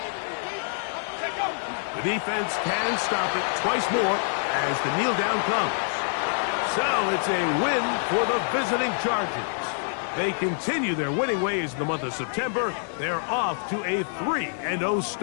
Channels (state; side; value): silent; right; digital silence